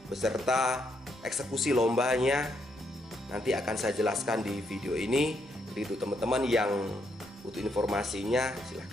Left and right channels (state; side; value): normal; both; correlation 0.76